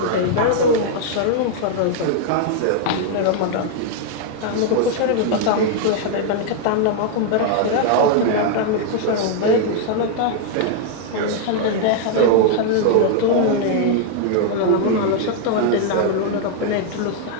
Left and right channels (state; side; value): different; both; correlation 0.00